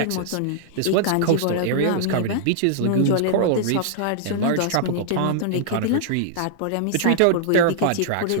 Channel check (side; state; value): both; different; correlation -0.01